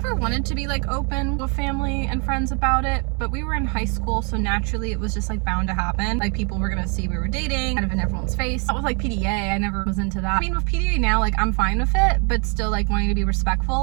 wanted to be like open with family and friends about it, but we were in high school, so naturally it was just like bound to happen. Like people were gonna see we were dating kind of in everyone's face. That was like PDA, I never was into that. I mean with PDA now, like I'm fine with it, but still like wanting to be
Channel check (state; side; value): quieter; left; 35.2 dB